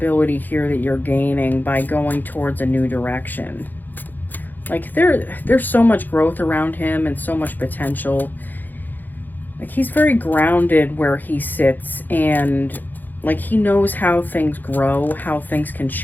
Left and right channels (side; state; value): right; late; 0.087 ms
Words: here that you're gaining by going towards a new direction. Like, there's so much growth around him and so much potential. Like, he's very grounded where he sits, and like, he knows how things grow, how things can